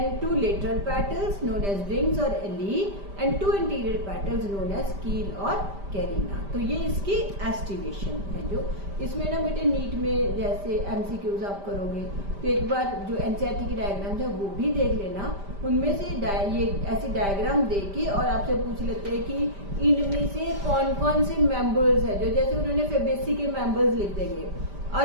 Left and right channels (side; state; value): left; late; 5.1 ms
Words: 2 lateral petals known as wings or ellie, and 2 anterior petals known as keel or carina। तो ये इसकी एस्टिवेशन है। जो इसमें ना बेटे नीट में जैसे एमसीक्यूज आप करोगे तो एक बार जो एनसीईआरटी की डायग्राम है वो भी देख लेना, उनमें से ये ऐसी डायग्राम देके और आपसे पूछ लेते हैं कि इनमें से कौन कौन से मेंबर्स है, जो जैसे उन्होंने फेबेसी के मेंबर्स लिख देंगे